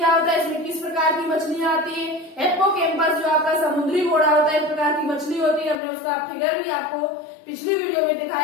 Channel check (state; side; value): drops out; right; at 5.8 s